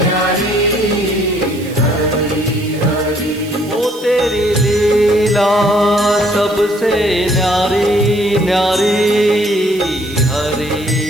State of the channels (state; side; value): noise; right; hiss, 19 dB below the sound